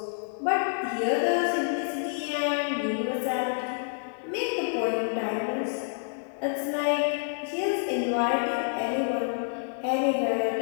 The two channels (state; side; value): silent; right; digital silence